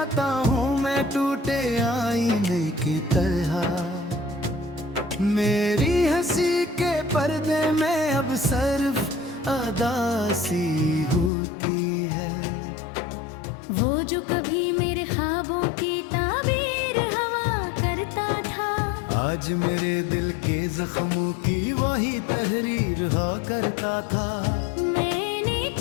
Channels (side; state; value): right; drops out; at 11.3 s